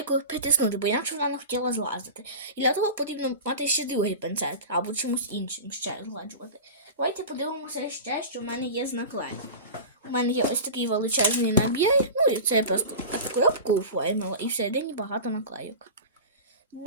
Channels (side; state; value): both; inverted; correlation -0.30